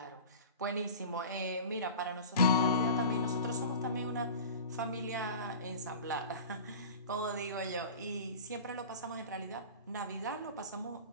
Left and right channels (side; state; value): both; inverted; correlation -0.37